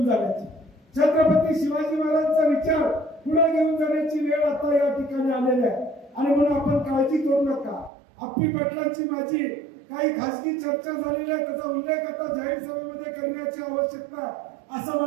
जाण्याची, छत्रपती शिवाजी महाराजांचा विचार पुढे घेऊन जाण्याची वेळ आता या ठिकाणी आलेली आहे. आणि म्हणून आपण काळजी करू नका. अप्पी पाटलांची माझी काही खासगी चर्चा झालेली आहे, त्याचा उल्लेख आता जाहीर सभेमध्ये करण्याची आवश्यकता असं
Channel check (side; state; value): left; drops out; at 7.9 s